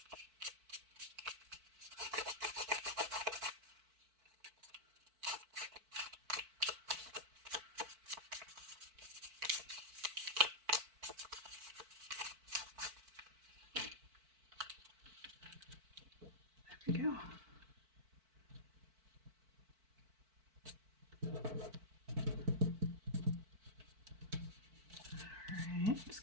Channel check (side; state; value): left; late; 4.5 ms